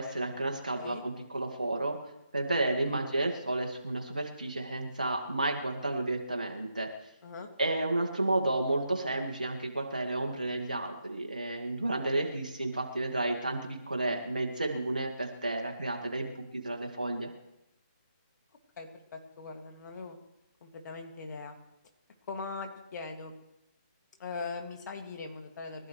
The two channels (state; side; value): inverted; both; correlation -0.81